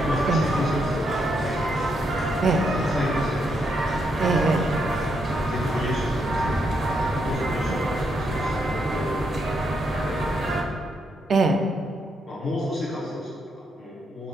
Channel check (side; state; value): both; normal; correlation 0.79